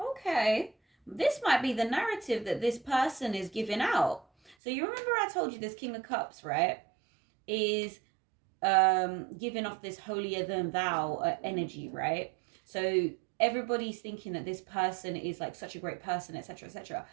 This might be the narrative that this person is giving out. So you remember I told you this King of Cups, right, is giving off this holier than thou energy, right? So everybody's thinking that this person is like such a great person, etc., etc.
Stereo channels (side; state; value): left; drops out; at 4.5 s